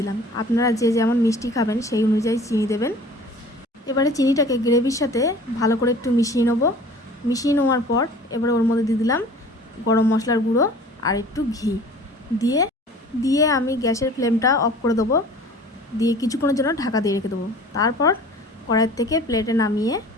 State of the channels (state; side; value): normal; both; correlation 0.46